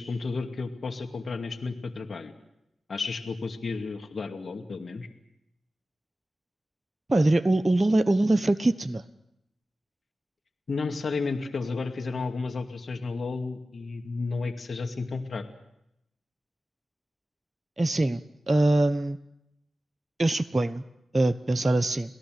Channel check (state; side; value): normal; both; correlation 0.95